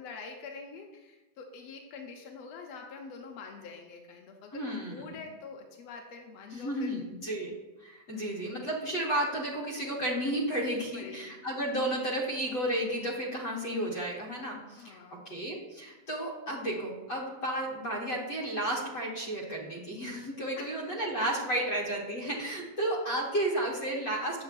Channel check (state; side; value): late; right; 7.9 ms